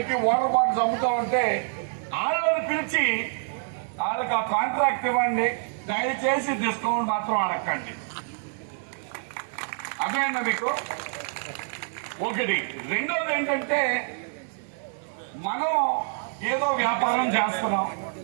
వాటర్ బాటిల్స్ అమ్ముతూ ఉంటే వాళ్ళని పిలిచి వాళ్ళకి ఆ కాంట్రాక్ట్ ఇవ్వండి. దయచేసి డిస్కౌంట్ మాత్రం అడగండి. అర్థమైందా మీకు? ఒకటి. రెండోది ఏంటంటే, మనం ఏదో వ్యాపారం చేస్తున్నాం,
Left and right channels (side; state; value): left; silent; 60 dB below the other